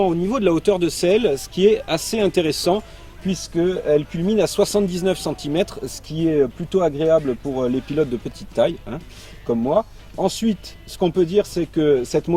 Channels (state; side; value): identical; both; correlation 1.00